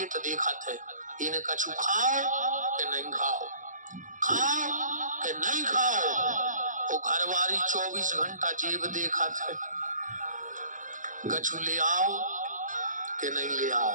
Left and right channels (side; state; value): left; late; 0.37 ms